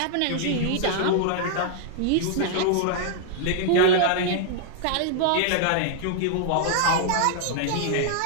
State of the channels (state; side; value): different; both; correlation -0.01